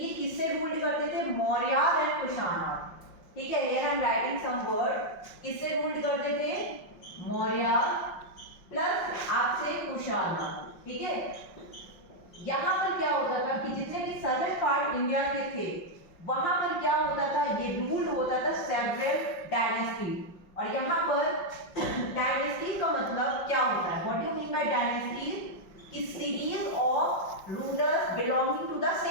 किससे रूल करते थे? मौर्य एंड कुशाना. ठीक है, here I am writing some word. किससे रूल करते थे? मौर्य प्लस आपसे कुशाना. ठीक है, यहाँ पर क्या होता था कि जितने भी सदर्न पार्ट इंडिया के थे वहां पर क्या होता था, ये रूल होता था सेवरल डायनेस्टी. और यहाँ पर डायनेस्टी का मतलब क्या होता है? What do you mean by dynasty? कि series of rulers belonging to the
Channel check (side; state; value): right; late; 5.5 ms